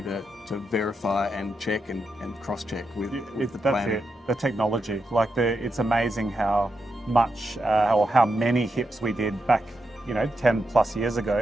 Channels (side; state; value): both; normal; correlation 0.85